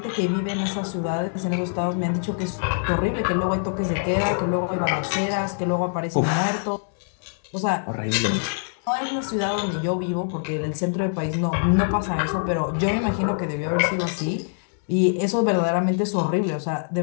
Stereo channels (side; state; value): right; silent; digital silence